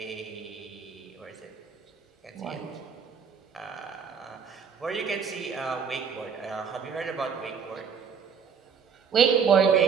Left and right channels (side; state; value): left; quieter; 6.6 dB